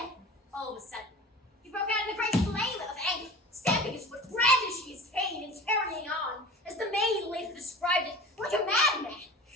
all of a sudden, he broke out in a great flame of anger, stamping his foot, brandishing his cane, and carrying on, as the maid later described it, like a madman.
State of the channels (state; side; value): normal; both; correlation 0.37